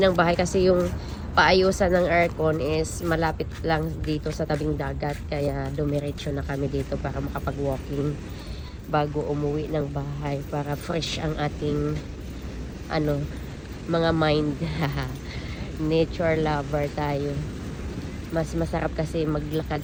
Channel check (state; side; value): identical; both; correlation 1.00